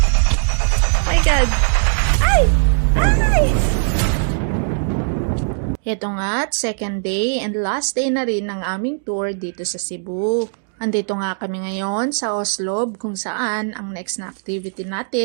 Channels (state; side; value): silent; left; digital silence